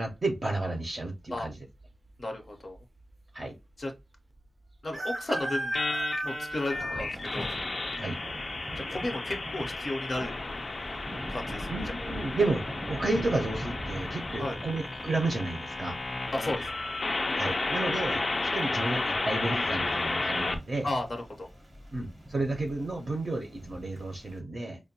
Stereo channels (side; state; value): both; normal; correlation 0.91